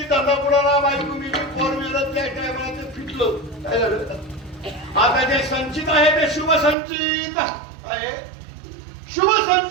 धंदा बुडाला, बायको मिली, पोर मिळत, त्या टायमाला ते फिटलं. काय झालं? आता जे संचित आहे ते शुभ संचित आहे. शुभ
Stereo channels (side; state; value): left; drops out; at 6.8 s